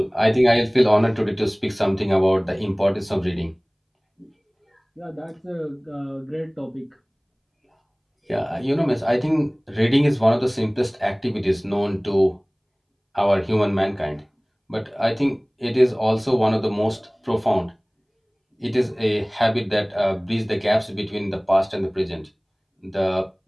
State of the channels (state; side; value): identical; both; correlation 1.00